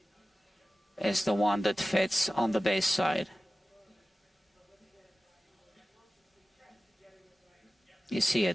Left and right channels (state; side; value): normal; both; correlation 0.95